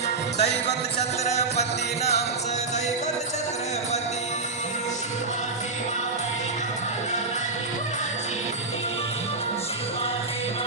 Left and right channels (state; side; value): quieter; left; 3.7 dB